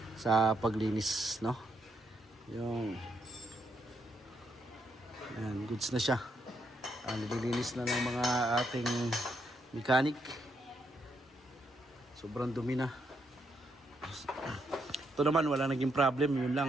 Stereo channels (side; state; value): both; normal; correlation 0.78